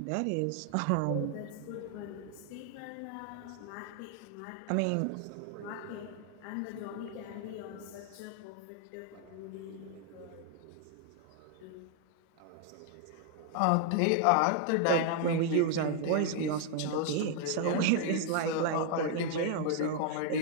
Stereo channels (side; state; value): both; different; correlation 0.00